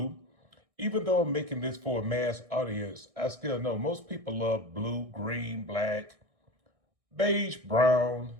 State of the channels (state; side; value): late; left; 1.6 ms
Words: Even though I'm making this for a mass audience, I still know most people love blue, green, black, beige, brown.